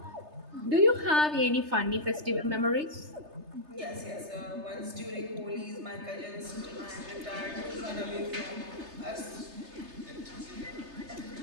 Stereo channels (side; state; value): left; late; 3.3 ms